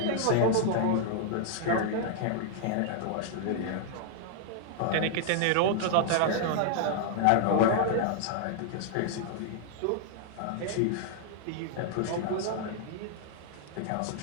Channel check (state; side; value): different; both; correlation 0.00